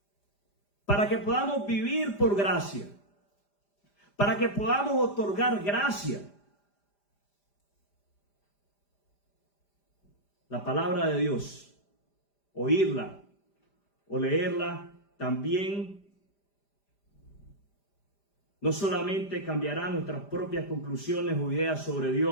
para que podamos vivir por gracia, para que podamos otorgar gracia. La palabra de Dios, oírla o leerla, también no solamente cambiará nuestras propias conclusiones o ideas sobre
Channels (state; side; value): late; right; 5.0 ms